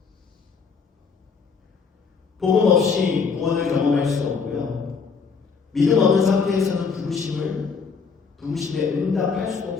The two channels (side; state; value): right; quieter; 5.4 dB